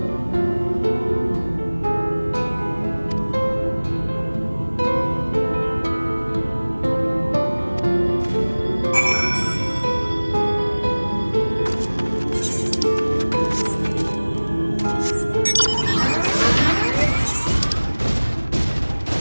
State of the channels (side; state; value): both; inverted; correlation -1.00